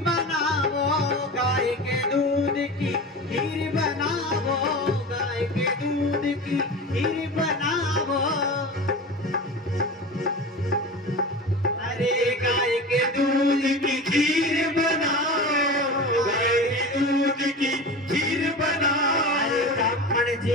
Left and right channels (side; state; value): both; normal; correlation 0.31